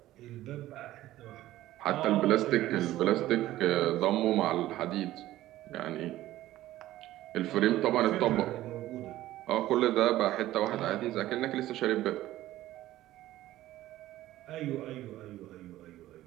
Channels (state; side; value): quieter; left; 15.0 dB